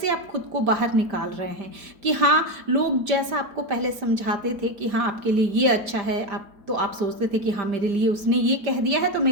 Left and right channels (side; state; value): left; late; 5.0 ms